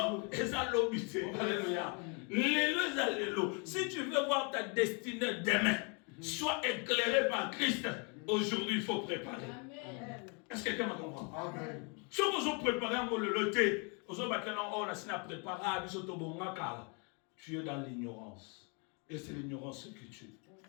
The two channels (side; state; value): right; quieter; 35.1 dB